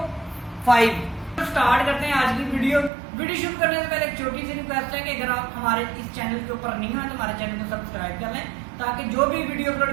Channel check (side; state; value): left; drops out; at 2.9 s